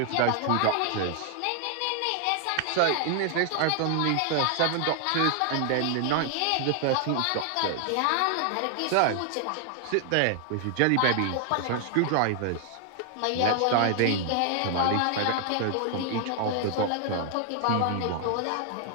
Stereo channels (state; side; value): different; both; correlation 0.00